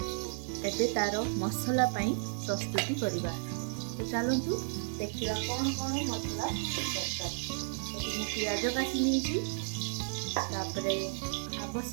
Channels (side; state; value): left; silent; digital silence